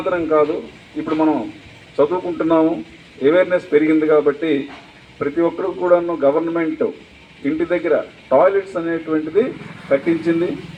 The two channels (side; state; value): both; identical; correlation 1.00